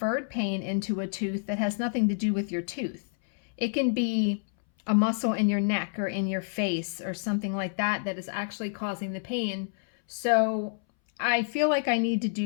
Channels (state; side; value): silent; right; 59 dB below the other